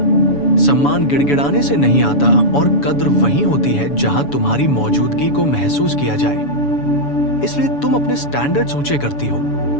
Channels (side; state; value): right; late; 7.0 ms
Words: सम्मान गिड़गिड़ाने से नहीं आता, और कद्र वही होती है जहां तुम्हारी मौजूदगी को महसूस किया जाए। इसलिए तुम अपने स्टैंडर्ड्स ऊंचे करती हो,